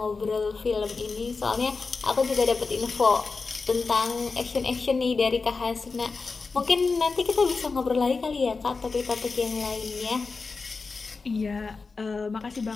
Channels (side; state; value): right; quieter; 4.3 dB